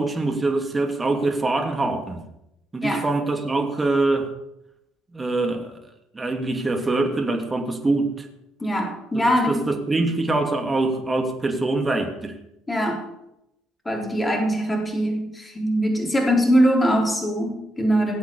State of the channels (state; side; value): normal; both; correlation 0.85